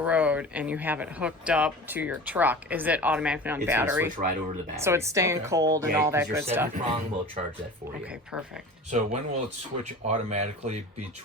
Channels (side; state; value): both; normal; correlation 0.37